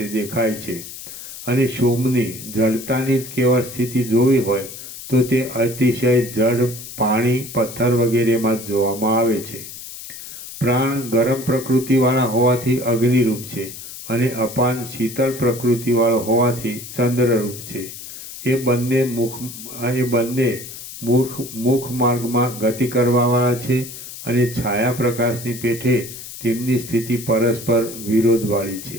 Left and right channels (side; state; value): left; noise; hiss, 12 dB below the sound